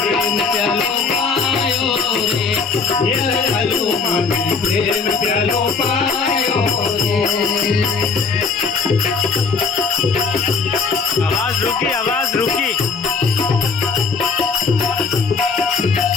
प्यालो पायो रे ये प्यालो माने प्रेम प्यालो पायो रे। आवाज रुकी आवाज रुकी।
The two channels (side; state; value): right; quieter; 5.0 dB